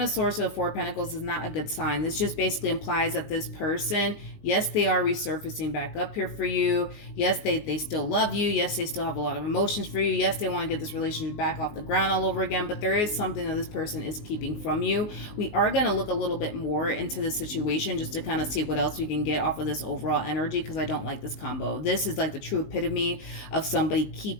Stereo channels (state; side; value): late; right; 19 ms